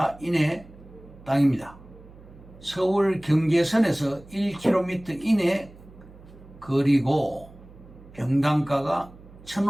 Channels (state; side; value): noise; right; hum, 21 dB below the sound